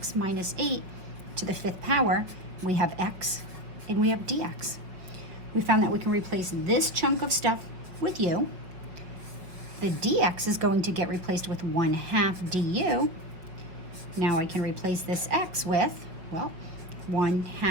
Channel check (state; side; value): late; left; 5.6 ms